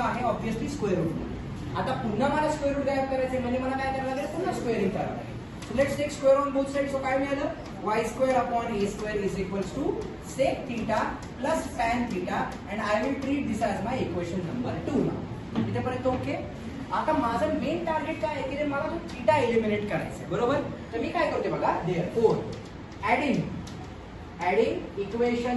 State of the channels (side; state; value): both; identical; correlation 1.00